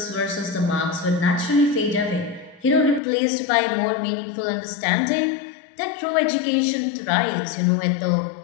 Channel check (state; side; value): drops out; right; at 3.0 s